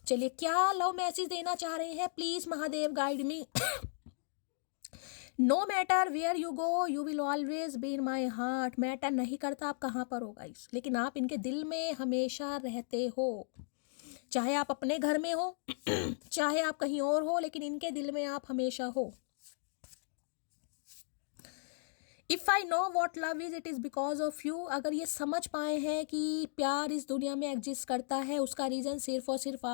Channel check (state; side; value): silent; right; digital silence